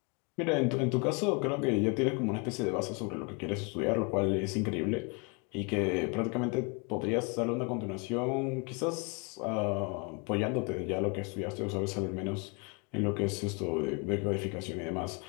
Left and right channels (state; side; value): quieter; right; 32.5 dB